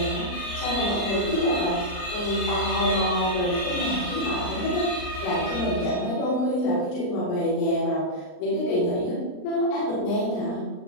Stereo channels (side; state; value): right; late; 39 ms